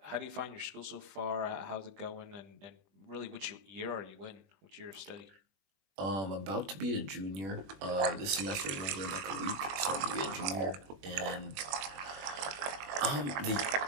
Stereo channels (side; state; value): left; late; 21 ms